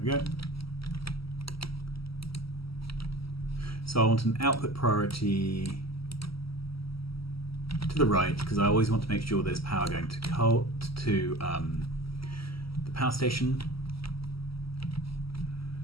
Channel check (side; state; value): right; late; 0.75 ms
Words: we go. So I want an output priority to the right, because I always want to make sure there's power going to the power station.